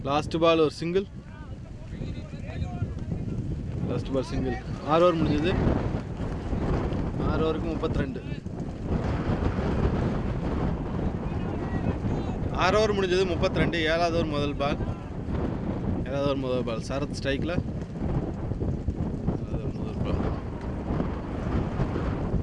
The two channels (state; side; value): identical; both; correlation 1.00